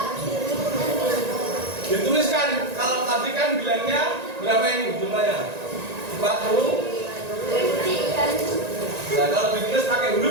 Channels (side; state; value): left; late; 1.9 ms